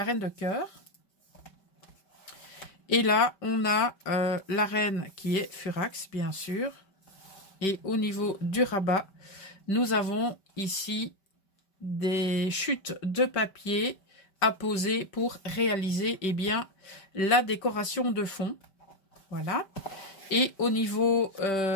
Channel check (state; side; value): late; right; 5.2 ms